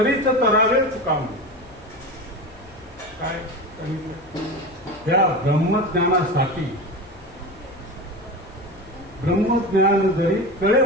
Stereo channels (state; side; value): noise; left; hum, 26 dB below the sound